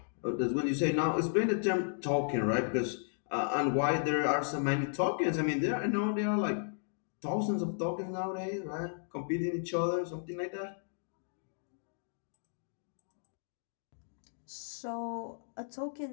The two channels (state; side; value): silent; right; digital silence